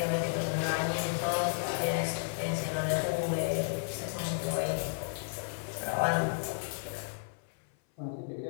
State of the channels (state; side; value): silent; right; 56 dB below the other